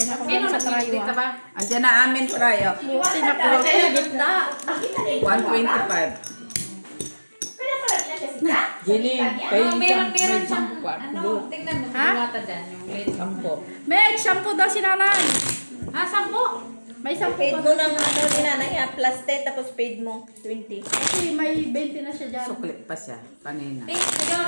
ako Sino sa trayo. nagdito Ah. ba? Andiyan na amin tayo. Buti nakuha ko sa gitna. 125. Pero pala na siya sita? Jenny, Oh, meron siyang, tingnan mo, Ha? diwata dyan, yung late sampo. May shampoo daw si nanay. Ah, sampo? May shampoo Paid pa. mo ng ano ni nanay ha, plus 10 tapos paid mo 20. Kasi may 20 na siya dyan. Suklit pa siya. Kanina.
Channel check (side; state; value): both; inverted; correlation -1.00